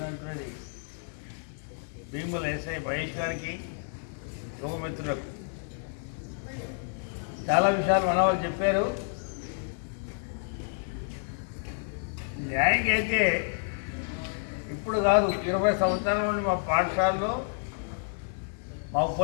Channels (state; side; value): silent; right; digital silence